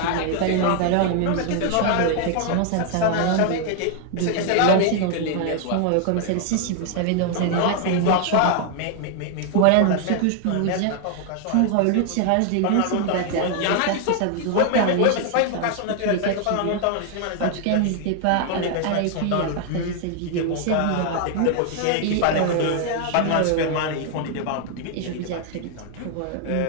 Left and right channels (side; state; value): both; different; correlation 0.00